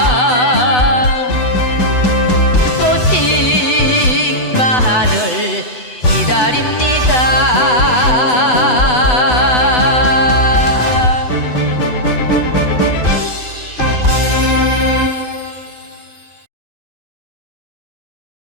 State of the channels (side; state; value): right; late; 8.0 ms